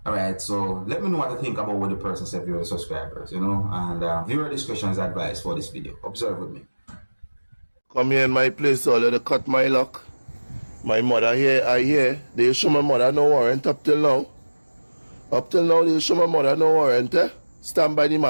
Alright, so let me know what to think about what the person said, viewer subscribers, you know, and viewer discretion is advised for this video. Observe with me. Come here in my place, so let cut my lock. My mother here, I hear. They show my mother no warrant up till now. Up till now, they show my mother no warrant, eh? Stand by the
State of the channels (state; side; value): inverted; both; correlation -1.00